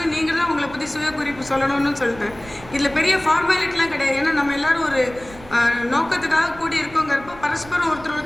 நீங்கள் தான் உங்களை பற்றி சுய குறிப்பு சொல்லணும்னு சொல்லிட்டேன். இதில் பெரிய ஃபார்மாலிட்டிலாம் கிடையாது. ஏன்னா நம்ம எல்லோரும் ஒரு நோக்கத்துக்காக கூடி இருக்கோங்கிறப்போ பரஸ்பரம்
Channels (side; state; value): right; noise; rumble, 19 dB below the sound